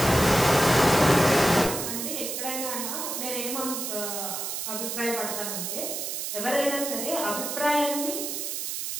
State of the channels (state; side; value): noise; right; hiss, 4 dB below the sound